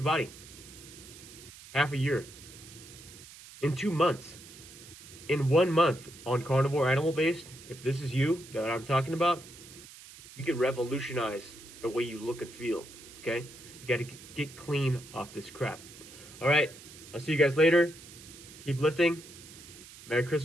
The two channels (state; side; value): noise; right; hiss, 18 dB below the sound